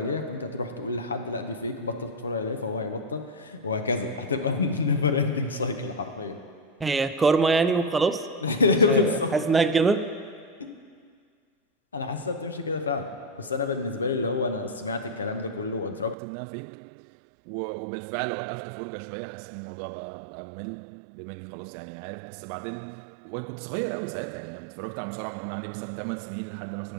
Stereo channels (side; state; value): left; drops out; at 16.2 s